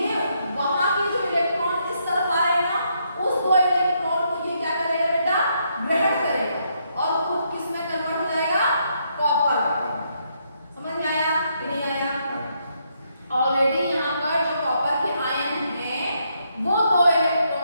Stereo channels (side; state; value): both; inverted; correlation -0.76